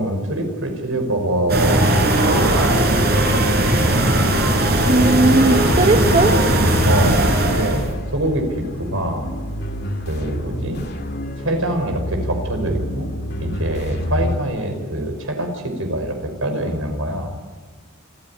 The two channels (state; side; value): normal; both; correlation 0.45